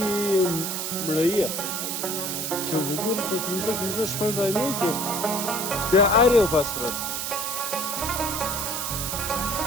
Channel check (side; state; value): right; noise; hiss, 2 dB below the sound